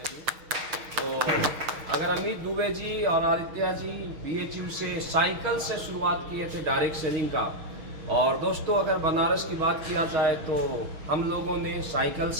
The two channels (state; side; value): late; left; 6.4 ms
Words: तो अगर अमित दुबे जी और आदित्य जी BHU से साइकिल से शुरुआत किए थे डायरेक्ट सेलिंग का। और दोस्तों अगर बनारस की बात किया जाए तो हम लोगों ने साइकिल